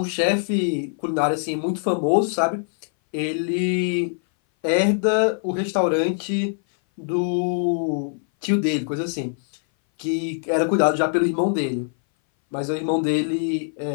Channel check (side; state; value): right; silent; 59 dB below the other